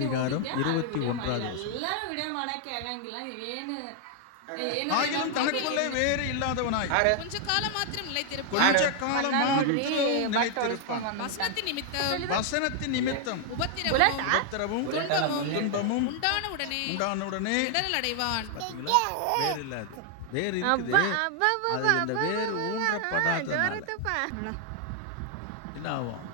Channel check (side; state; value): both; different; correlation 0.00